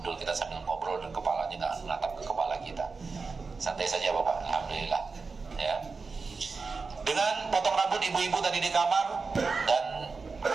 kita sambil ngobrol, dan kepalanya nggak menatap ke kepala kita. Santai saja Bapak, alhamdulillah. Ya. Dengan potong rambut ibu-ibu tadi di kamar, dan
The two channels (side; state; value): left; quieter; 4.5 dB